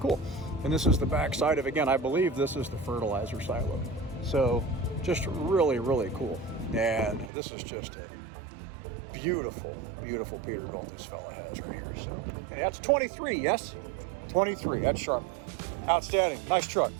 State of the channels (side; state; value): left; drops out; at 7.3 s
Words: And this is the back side of, again, I believe this is the fertilizer silo. So just really, really cool. And this is just a beautiful, beautiful Peterbilt this fella has right here. So and that's 23, yes? 23, that's sharp. Outstanding, nice truck.